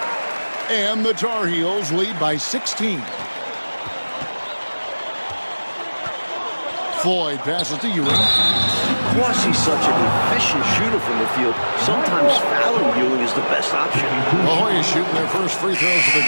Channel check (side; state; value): both; inverted; correlation -1.00